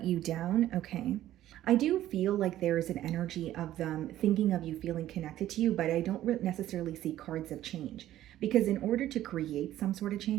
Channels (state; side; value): quieter; left; 13.4 dB